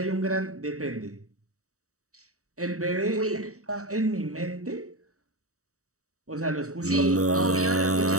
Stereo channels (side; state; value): left; late; 0.65 ms